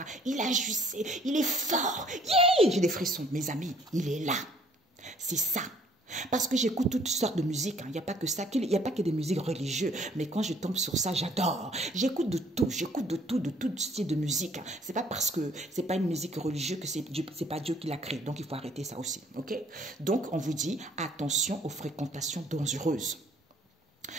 Il agissait. Il est fort. Yeah! J'ai des frissons. Mes amis, il est là. C'est ça. Parce que j'écoute toutes sortes de musiques. Hein. Il n'y a pas que ça. Il n'y a pas que des musiques religieuses. Mais quand je tombe sur ça, j'adore. J'écoute de tout. J'écoute de tout style de musique. Hein. C'est pas parce que c'est pas une musique religieuse que c'est pas Dieu qui l'a créé. Donc, il faut arrêter ça aussi. OK? Donc, on vous dit, attention aux fréquentations dangereuses.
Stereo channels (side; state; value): both; normal; correlation 0.60